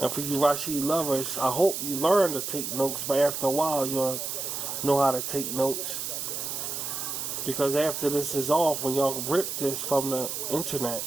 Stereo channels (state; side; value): noise; right; hiss, 4 dB below the sound